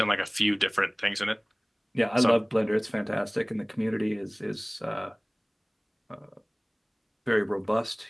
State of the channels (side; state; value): both; identical; correlation 1.00